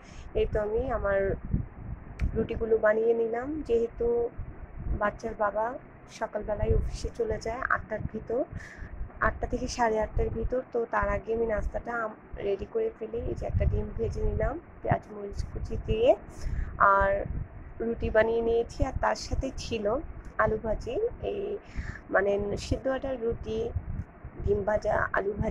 এই তো আমি আমার রুটিগুলো বানিয়ে নিলাম, যেহেতু বাচ্চার বাবা সকালবেলায় অফিসে চলে যায় 8টার ভিতর, 8টা থেকে 8:30টার ভিতর। তো তার আগে আমি নাস্তাটা রেডি করে ফেলি। এই যে একটা ডিম ভেজে নিলাম পেঁয়াজ মরিচ কুচি দিয়ে, আর রুটি বানিয়ে নিয়েছি। আর তার সাথে ছিল আলু ভাজি, এই মানে সিদ্ধ আটার রুটি, ডিম ভাজা, আলু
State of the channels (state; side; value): identical; both; correlation 1.00